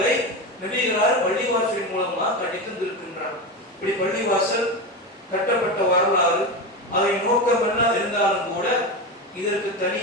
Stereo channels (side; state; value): both; normal; correlation 0.19